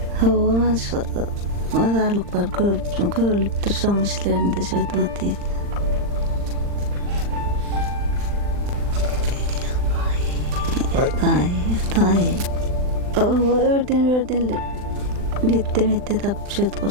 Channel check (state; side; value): late; left; 39 ms